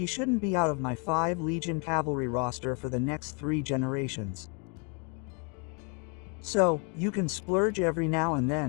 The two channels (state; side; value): quieter; right; 35.9 dB